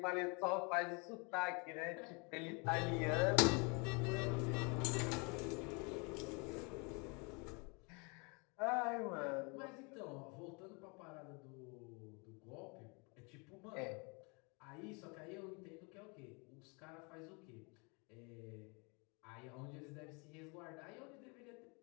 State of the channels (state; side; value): quieter; right; 31.8 dB